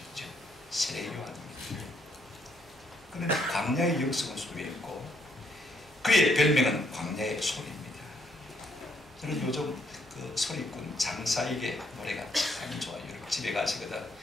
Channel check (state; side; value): normal; both; correlation 0.71